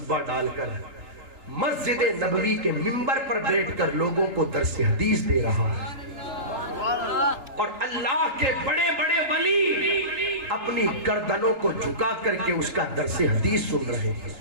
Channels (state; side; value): late; left; 3.8 ms